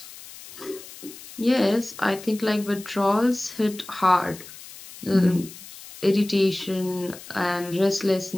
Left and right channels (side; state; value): left; noise; hiss, 16 dB below the sound